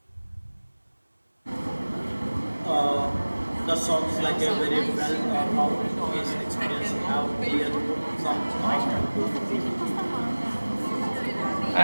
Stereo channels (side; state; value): both; inverted; correlation -1.00